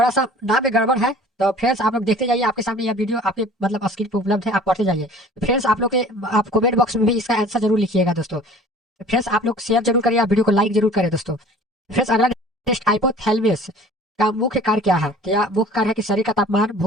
सा नाम में गड़बड़ है, तो फ्रेंड्स आप लोग देखते जाइए, आपके सामने यह वीडियो आपके मतलब स्क्रीन पर उपलब्ध है, आप पढ़ते जाइए। फ्रेंड्स आप लोग के आप कमेंट बॉक्स में भी इसका आंसर जरूर लिखिएगा दोस्तों। फ्रेंड्स आप लोग शेयर जरूर करिए, आप वीडियो को लाइक जरूर करें दोस्तों। फ्रेंड्स अगला नेक्स्ट हाइपोथैलेमस का मुख्य कार्य क्या है, तो यह मुख्य कार्य है कि शरीर का तापमान,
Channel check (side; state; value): both; normal; correlation 0.47